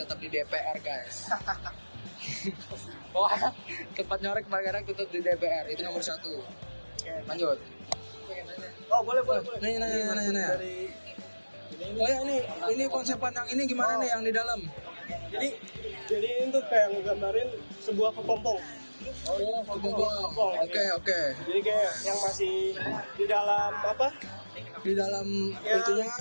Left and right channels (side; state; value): both; inverted; correlation -1.00